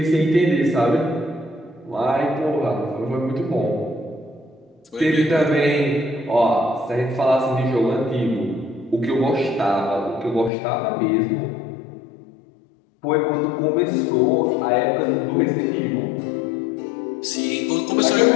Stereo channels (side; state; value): right; drops out; at 10.5 s